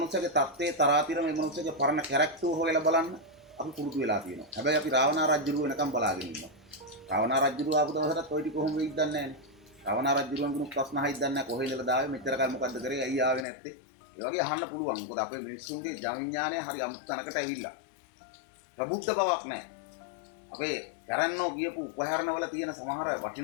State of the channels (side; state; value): right; drops out; at 13.5 s